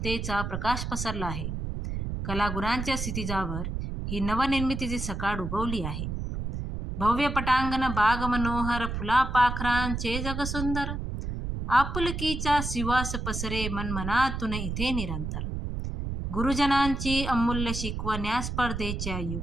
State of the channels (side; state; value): right; noise; rumble, 4 dB below the sound